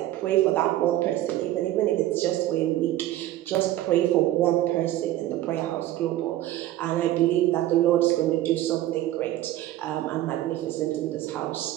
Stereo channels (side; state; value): left; quieter; 14.4 dB